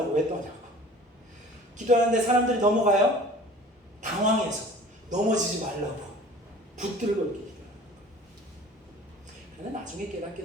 왜 떠냐고. 기도하는데 사람들이 넘어가요. 당황해서 넘어지지 말라고 붙들고 이렇게 기도하는 거예요. 그런데 나중에 깨닫게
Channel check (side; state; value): both; normal; correlation 0.45